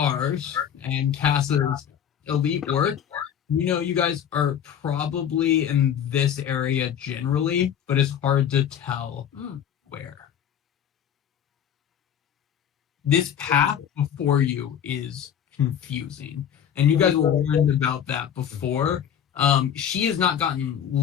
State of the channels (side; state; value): right; quieter; 9.0 dB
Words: and Cass's elite work, you guys are probably in this area generally, but it's hard to tell where. This path before you is confusing, and you guys will learn about that before. She has not gotten